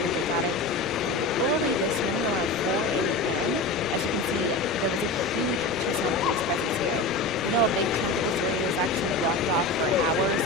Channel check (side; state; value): right; quieter; 3.1 dB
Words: They got it early this morning around 4 a.m. As you can see, there was a huge Tucson police presence here. We know a big chunk of this area was actually blocked off for hours